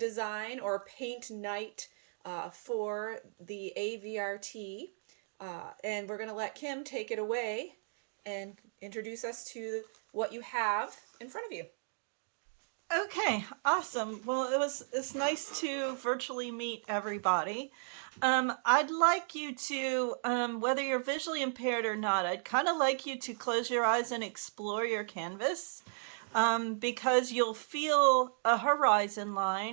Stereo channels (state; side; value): silent; left; digital silence